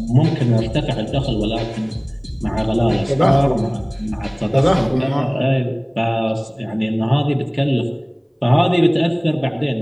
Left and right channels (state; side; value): identical; both; correlation 1.00